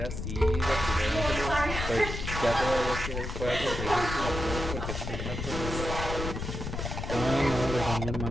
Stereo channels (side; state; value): left; noise; rumble, 5 dB below the sound